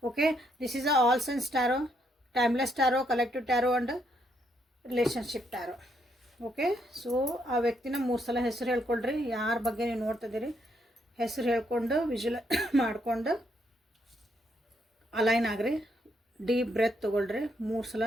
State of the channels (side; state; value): both; normal; correlation 0.74